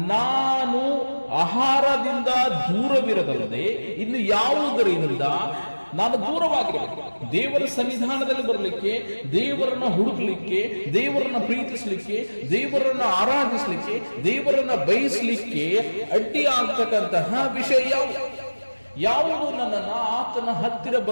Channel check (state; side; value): inverted; both; correlation -1.00